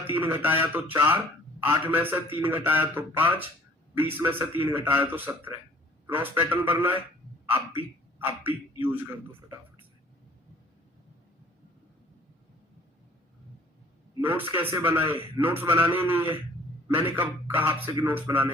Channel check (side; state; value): both; normal; correlation 0.54